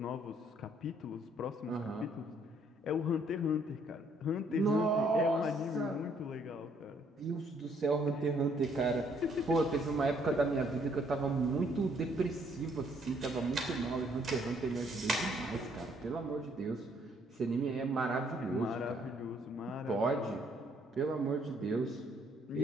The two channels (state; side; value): normal; both; correlation 0.66